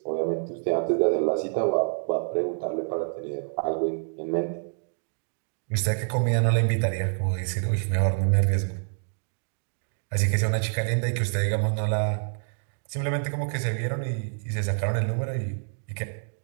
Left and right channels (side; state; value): left; silent; digital silence